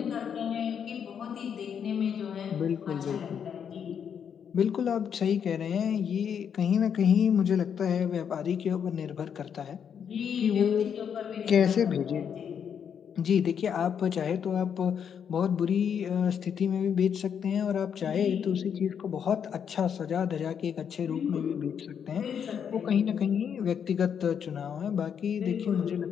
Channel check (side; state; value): right; quieter; 7.8 dB